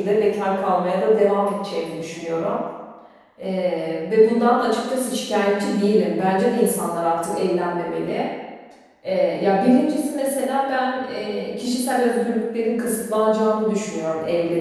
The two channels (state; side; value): identical; both; correlation 1.00